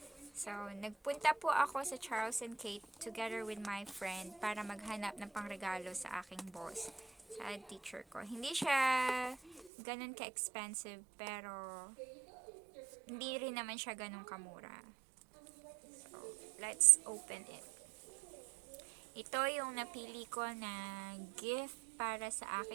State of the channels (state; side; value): drops out; left; at 9.7 s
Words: So nagpunta po ako sa Charles and Kate together with my friend para maghanap ng pangregalo sa aking boss, sa teacher ko. Hindi siya ganun ka-expensive pero hindi rin naman siya ganun kamura. So let's open it. Ito yung napili ko na gift para sa